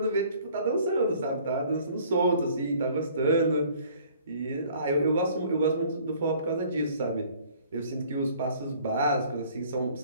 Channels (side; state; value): both; inverted; correlation -0.55